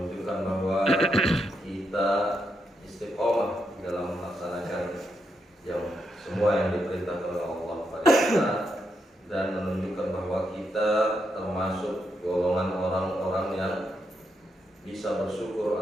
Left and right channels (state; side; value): normal; both; correlation 0.81